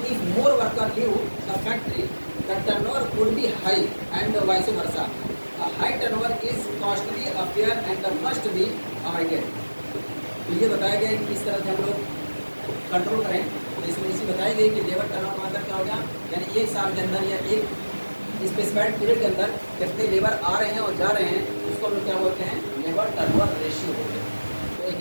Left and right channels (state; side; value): inverted; both; correlation -1.00